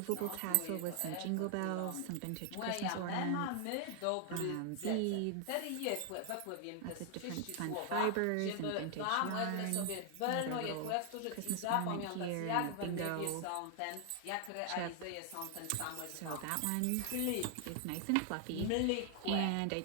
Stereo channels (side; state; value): both; different; correlation 0.00